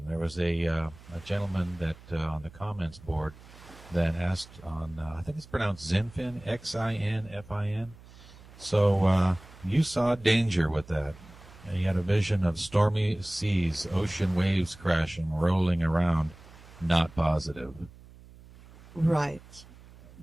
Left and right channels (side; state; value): right; noise; hum, 21 dB below the sound